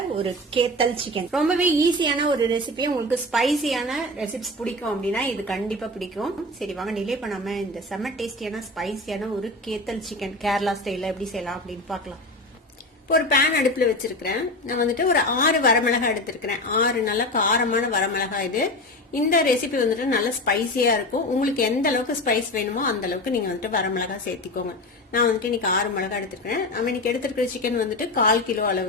ஒரு கேத்தல் சிக்கன். ரொம்பவே ஈஸியான ஒரு ரெசிபி. உங்களுக்கு ஸ்பைசியான ரெசிபிஸ் பிடிக்கும் அப்படின்னா இது கண்டிப்பா பிடிக்கும். சரி வாங்க டிலே பண்ணாம இந்த செம்ம டேஸ்டியான ஸ்பைசியான ஒரு கேத்தல் சிக்கன் கேரளா ஸ்டைல்ல எப்படி செய்யலாம் அப்படின்னு பார்க்கலாம். இப்போ ஒரு பேன் அடுப்புல வச்சிருக்கிறேன். நான் வந்துட்டு ஒரு 6 வரமிளகாய் எடுத்திருக்கிறேன். 6 நல்ல காரமான வரமிளகாய். இது இந்த ரெசிபி வந்துட்டு நல்ல ஸ்பைசியா இருக்கும். உங்களுக்கு எந்த அளவுக்கு ஸ்பைஸ் வேணுமோ அந்த அளவுக்கு நீங்க வந்துட்டு வரமிளகாய் சேர்த்திக்கோங்க. நான் வந்துட்டு இன்னைக்கு 6 மிளகாய் எடுத்திருக்கிறேன். நம்ம இன்னைக்கு எடுத்திருக்கிற சிக்கன் வந்துட்டு 1/4 கிலோ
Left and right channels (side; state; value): both; normal; correlation 0.26